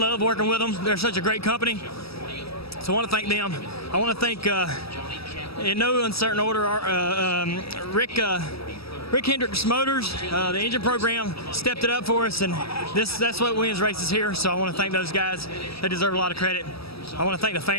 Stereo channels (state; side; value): late; right; 0.77 ms